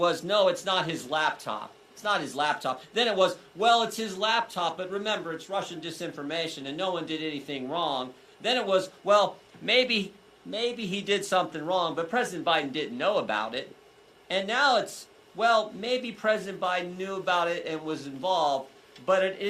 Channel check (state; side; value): identical; both; correlation 1.00